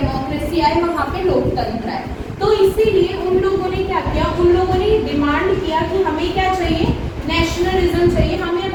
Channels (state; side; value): identical; both; correlation 1.00